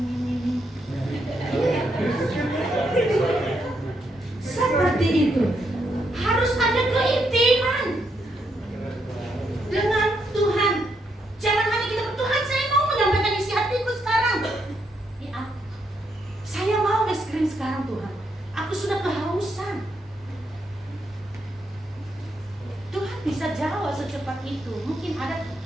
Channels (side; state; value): both; normal; correlation 0.78